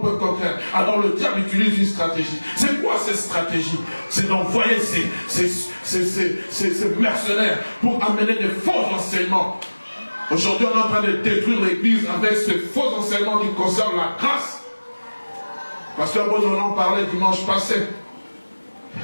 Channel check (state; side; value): inverted; both; correlation -1.00